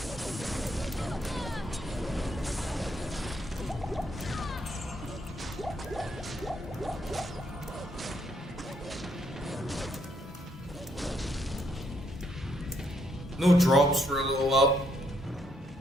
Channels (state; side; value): normal; both; correlation 0.73